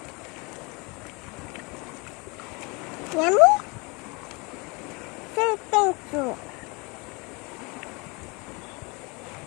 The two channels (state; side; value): quieter; right; 28.3 dB